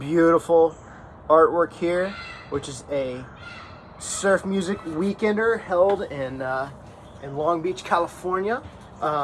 artwork here, which is a surf music weekender held in Long Beach, California,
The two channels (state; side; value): identical; both; correlation 1.00